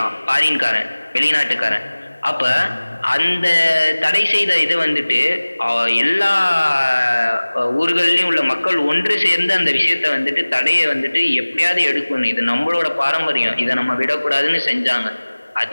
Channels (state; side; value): inverted; both; correlation -1.00